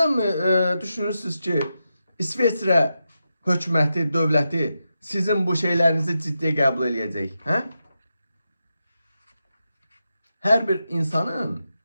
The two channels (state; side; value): inverted; both; correlation -0.88